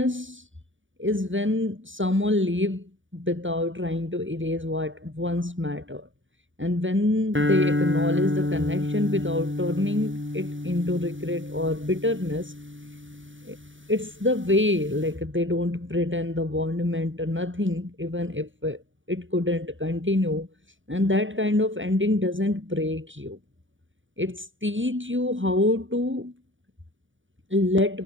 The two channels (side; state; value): left; late; 0.56 ms